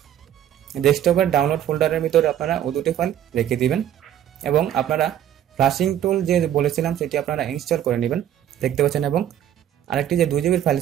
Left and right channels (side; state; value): left; quieter; 10.8 dB